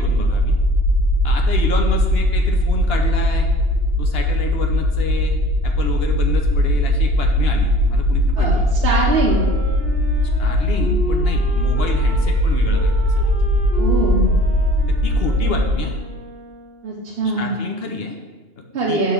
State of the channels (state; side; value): late; left; 2.8 ms